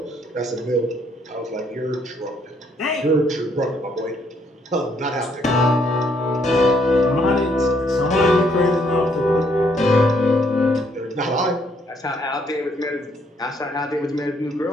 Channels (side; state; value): both; normal; correlation 0.69